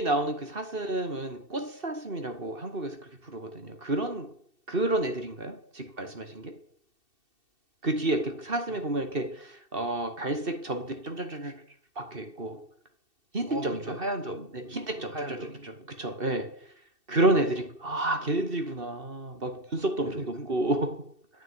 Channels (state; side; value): late; left; 2.7 ms